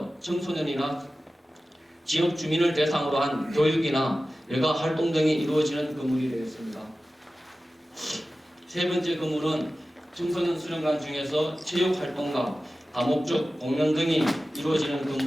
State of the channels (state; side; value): normal; both; correlation 0.95